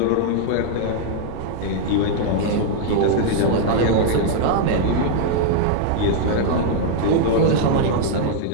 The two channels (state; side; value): different; both; correlation -0.01